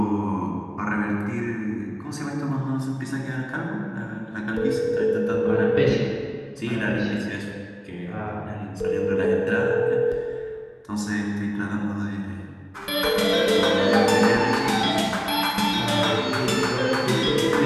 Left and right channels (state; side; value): identical; both; correlation 1.00